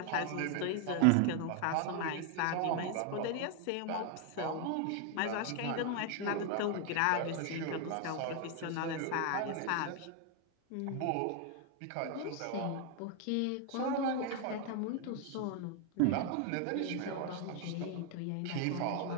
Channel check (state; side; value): different; both; correlation 0.01